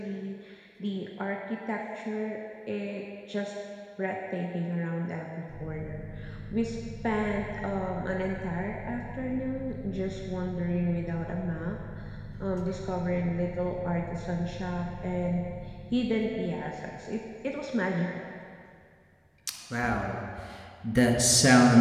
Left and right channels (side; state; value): both; identical; correlation 1.00